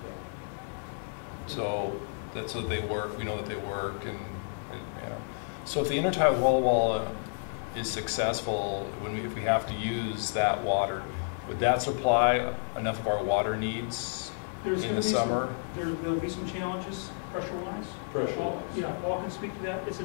So that's so they work. We know that they work, and yeah. So if the intertie wall is successful, if we have to use that water, would that supply enough of our water needs in the summer? There'll be some challenges pressure-wise. Pressure-wise. Yeah, Paul can speak to that. It's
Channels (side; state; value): right; silent; digital silence